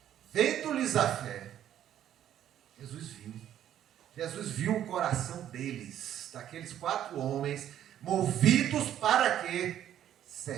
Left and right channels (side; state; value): left; quieter; 11.0 dB